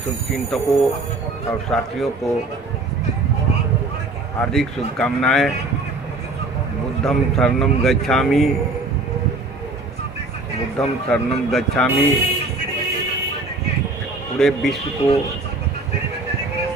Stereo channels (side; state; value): left; quieter; 3.1 dB